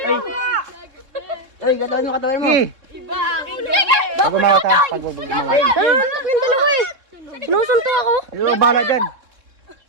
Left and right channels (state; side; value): late; left; 3.7 ms